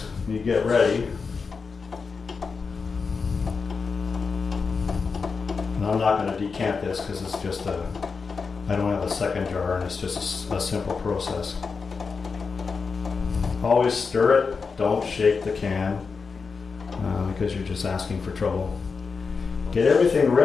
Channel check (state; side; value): quieter; right; 5.0 dB